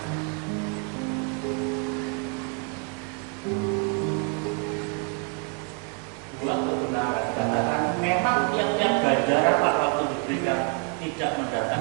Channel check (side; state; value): left; quieter; 34.3 dB